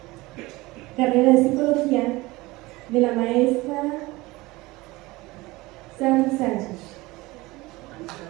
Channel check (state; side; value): quieter; left; 21.1 dB